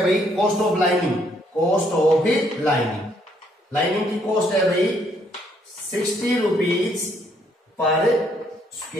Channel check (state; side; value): normal; both; correlation 0.69